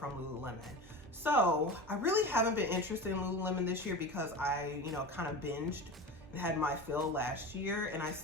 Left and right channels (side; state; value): both; normal; correlation 0.29